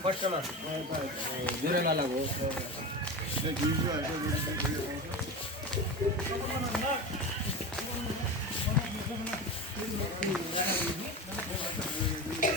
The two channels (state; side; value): normal; both; correlation 0.25